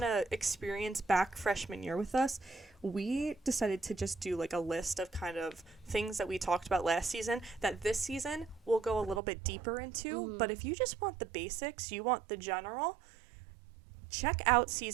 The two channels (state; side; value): drops out; left; at 9.2 s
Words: to experience back freshman year with us. We decided to just do like a list of kind of things that we talked about last season that this season we'll go a little bit deeper into. But if you just want the basics, you want the general, check out